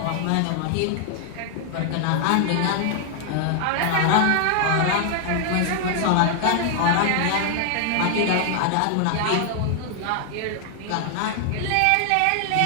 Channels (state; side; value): different; both; correlation 0.00